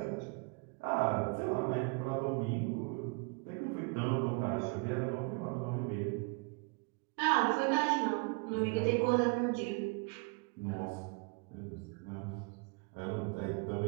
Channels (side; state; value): left; quieter; 31.3 dB